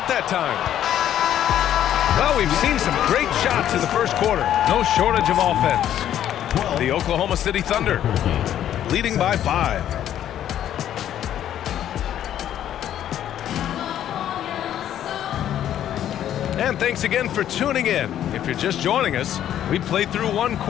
that time. Well, we've seen some great shots in the first quarter. No shortage of offense. The Oklahoma City Thunder leading by 5. And thanks again for tuning in. If you're just joining us, we played through 1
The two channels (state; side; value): quieter; right; 11.0 dB